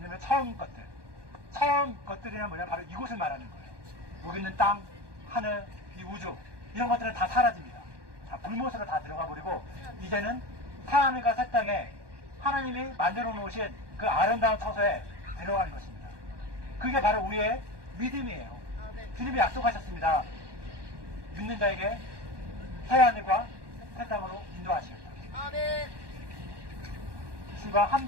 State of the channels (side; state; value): left; late; 1.2 ms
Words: 처음 것들이란 뭐냐, 바로 이곳을 말하는 거예요. 여기 있는 땅, 하늘, 이 우주 이런 것들은 다 사라집니다. 다 불못으로 다 들어가 버리고 이제는 하나님과 새 땅에 하나님이 만들어 놓으신 그 아름다운 처소에 들어가는 것입니다. 그게 바로 우리의 믿음이에요. 주님이 약속하셨습니다. 믿는 자에게 새 하늘과 새 땅으로 인도하시겠다. 아멘. 주가 한